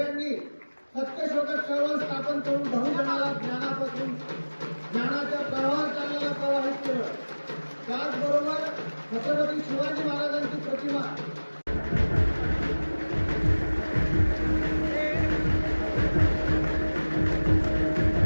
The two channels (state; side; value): inverted; both; correlation -1.00